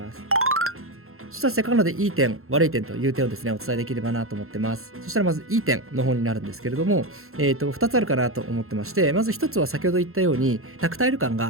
す。そしたらせっかくなのでいい点、悪い点という点をですね、お伝えできればなと思ってます。そしたらまずいい点の方になるんですけれども、2つあるかなと思ってまして、まず1つは先ほど言ったように、タクタイル感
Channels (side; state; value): left; late; 0.62 ms